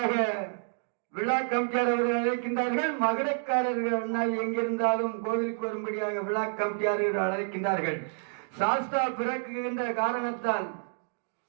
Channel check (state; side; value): silent; left; digital silence